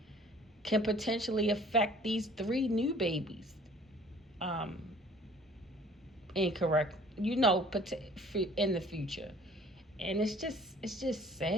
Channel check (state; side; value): normal; both; correlation 0.53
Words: can potentially affect these three new babies. um, incorrect, in the future. And it's just